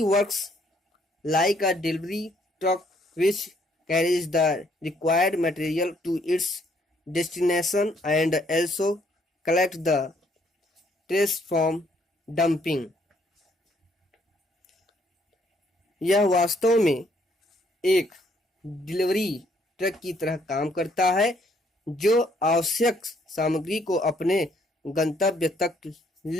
works like a delivery truck which carries the required material to its destination and also collect the trash from dumping. यह वास्तव में एक डिलीवरी ट्रक की तरह काम करता है जो आवश्यक सामग्री को अपने गंतव्य तक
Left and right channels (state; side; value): normal; both; correlation 0.67